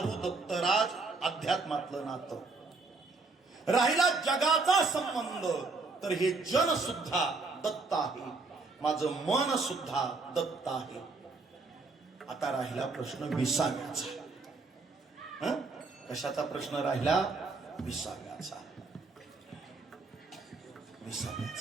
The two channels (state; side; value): quieter; left; 3.9 dB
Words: दत्तराज. अध्यात्मातलं नातं राहिला जगाचा संबंध, तर हे जन सुद्धा दत्त आहे, माझं मन सुद्धा दत्त आहे. आता राहिला प्रश्न विसाव्याचा. कशाचा प्रश्न राहिला? विसाव्याचा.